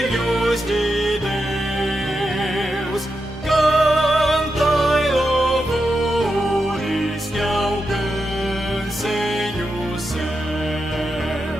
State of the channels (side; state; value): both; normal; correlation 0.87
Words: de Deus, cantai louvores que alcancem os